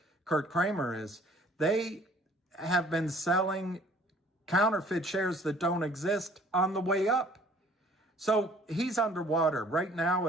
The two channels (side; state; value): both; normal; correlation 0.55